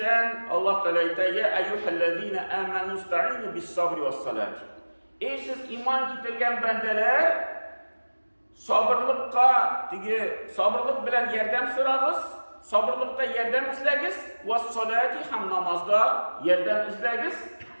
Allah Teala aytadi: "Ya ayyuhallazina amanu ista'inu bis-sabri was-salati." Ey siz iman keltirgan bandalar, sabırlık bilan yordam so'rag'iz, sabırlıkta yordam izlagiz, was-salati ham namozda yordam izlagiz.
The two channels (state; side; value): inverted; both; correlation -1.00